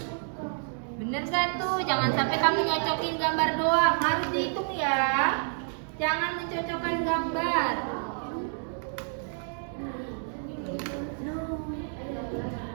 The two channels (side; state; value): left; silent; 57 dB below the other